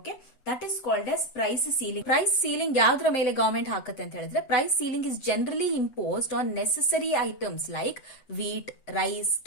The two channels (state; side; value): late; right; 8.1 ms